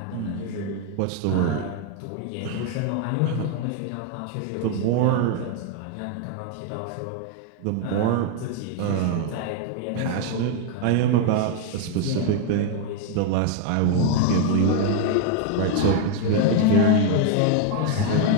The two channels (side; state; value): both; different; correlation 0.01